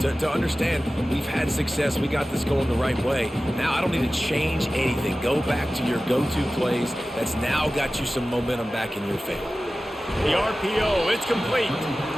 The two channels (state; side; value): normal; both; correlation 0.96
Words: understand we've had success, we got this going the right way. Now I don't need to change anything. Go back to your go-to plays. That's now got you some momentum back in your favor. The RPO, it's complete.